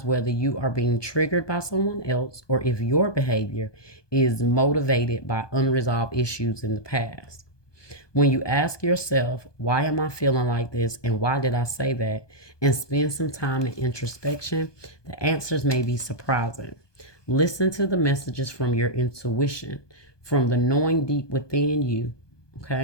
whether you are being triggered by someone else or if your behavior is motivated by unresolved issues in the past. When you ask yourself, why am I feeling like this and why did I say that, and spend some time in introspection, the answers may be surprising. Listen to the messages from your intuition, from the knowing deep within you.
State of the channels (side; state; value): right; late; 1.2 ms